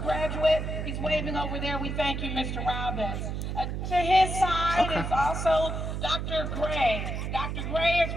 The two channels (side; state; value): right; noise; hum, 3 dB below the sound